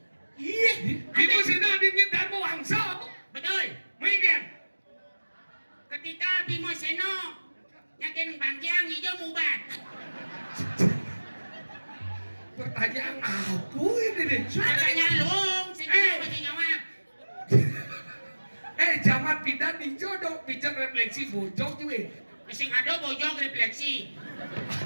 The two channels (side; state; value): both; inverted; correlation -1.00